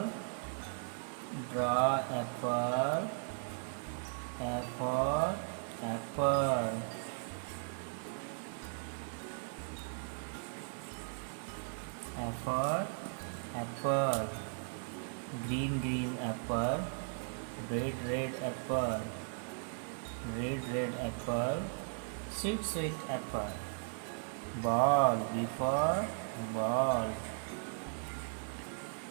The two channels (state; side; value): silent; left; digital silence